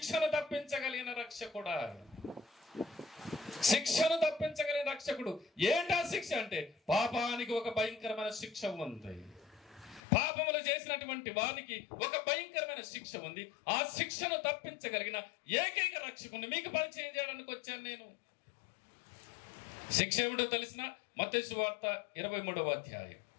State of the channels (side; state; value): right; drops out; at 10.0 s